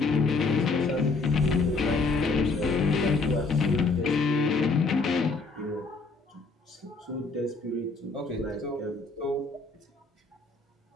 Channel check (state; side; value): quieter; right; 3.8 dB